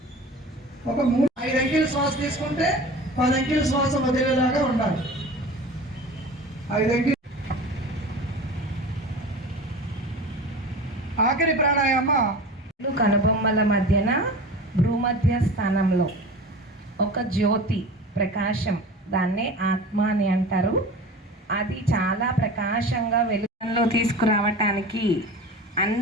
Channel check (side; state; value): both; normal; correlation 0.35